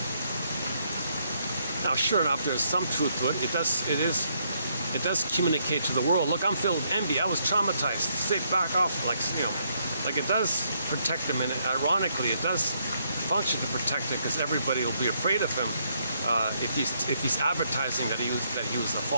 Now, sure enough, there's some truth to it. It does communicate to the world. Look, I'm filled with envy. I was traumatized. Stay back off, like it does protect him, and ironically, it does function to protect him because everybody will be afraid of him if he's advertising that he was a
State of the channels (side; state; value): both; inverted; correlation -0.73